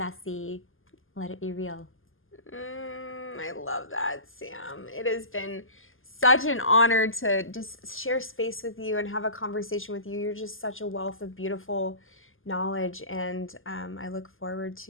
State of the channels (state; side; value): late; right; 0.59 ms